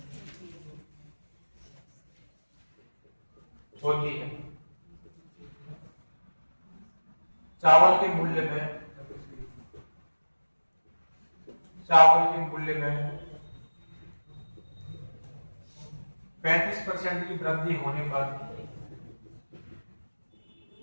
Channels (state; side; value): inverted; both; correlation -1.00